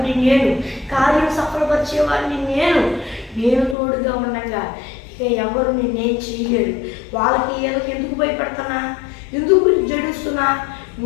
నేను కార్యం సఫలపరిచేవాడిని, నేను తోడుగా ఉండగా ఇక ఎవరు నేనేం చేయలేరు. వాళ్ళకి ఏదోకి ఎందుకు భయపడుతున్నా, ఎందుకు జడుస్తున్నా?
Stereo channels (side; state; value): right; drops out; at 3.8 s